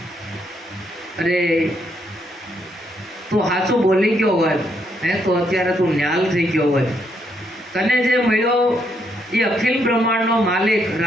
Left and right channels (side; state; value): both; normal; correlation 0.75